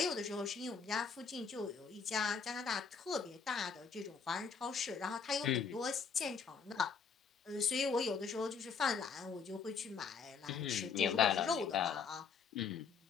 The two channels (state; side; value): quieter; right; 5.8 dB